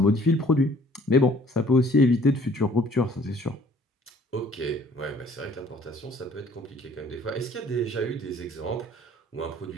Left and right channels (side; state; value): both; normal; correlation 0.56